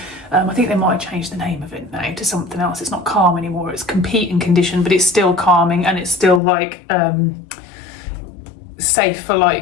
I think they might have changed the name of it now to something else. It's not calm anymore, it's competing condition, but it's still calming, and it's still like safe for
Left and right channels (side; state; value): right; drops out; at 6.4 s